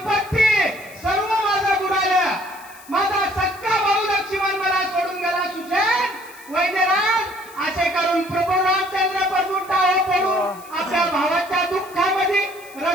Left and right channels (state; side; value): noise; left; hiss, 21 dB below the sound